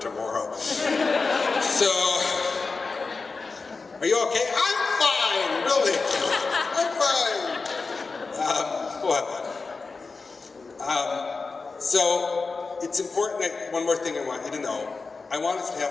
So, are you okay? I'm fine, really. I'm fine. We'll have fun. So, it's important that one more thing I want you to know. I want us to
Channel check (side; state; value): right; quieter; 4.2 dB